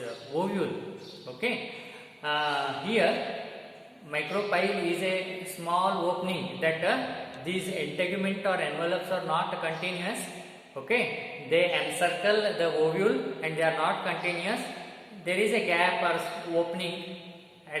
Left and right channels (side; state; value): both; identical; correlation 1.00